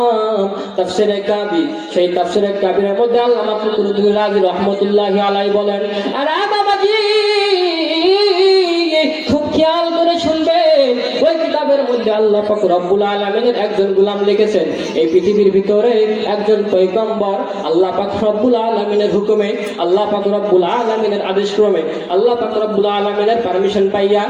তাফসীরে কাবীর। সেই তাফসীরে কাবীরের মধ্যে আল্লামা ফখরুদ্দীন রাজি রাহমাতুল্লাহি আলাইহি বলেন, আরে বাবাজি খুব খেয়াল করে শুনবেন, ওই কিতাবের মধ্যে আল্লাহ পাক রব্বুল আলামিনের একজন গোলাম লিখেছেন, এই পৃথিবীর ভিতরে একজন পয়গম্বর আল্লাহ পাক রব্বুল আলামিনের হুকুমে, আল্লাহ পাক রব্বুল আলামিনের আদেশ ক্রমে, আল্লাহ পাক রব্বুল আলামিনের পারমিশন পাইয়া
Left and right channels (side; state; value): both; identical; correlation 1.00